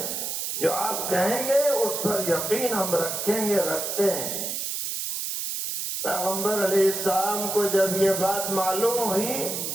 جو آپ کہیں گے اس پر یقین ہم رکھیں گے، رکھتے ہیں۔ پیغمبر علیہ السلام کو جب یہ بات معلوم ہوئی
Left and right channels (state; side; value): noise; right; hiss, 3 dB below the sound